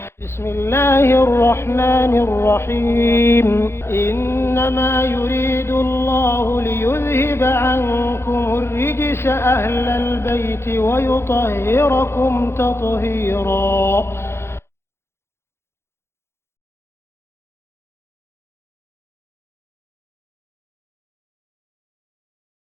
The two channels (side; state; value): right; late; 0.12 ms